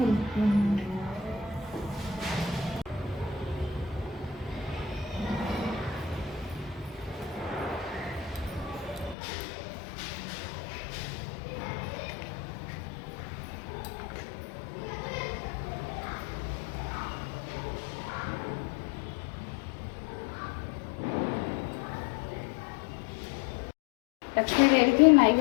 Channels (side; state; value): right; drops out; at 9.2 s